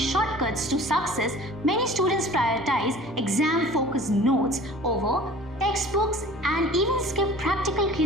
to success, many students prioritize exam-focused notes over textbooks and even skip practical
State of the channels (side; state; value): both; normal; correlation 0.45